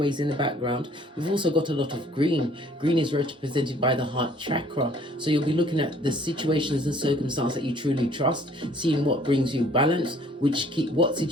in the background? We've also got a lot of green. Green is represented by the heart chakra. So you'll be looking at the situations and circumstances that you truly trust, seeing what brings you balance, what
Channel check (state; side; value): normal; both; correlation 0.57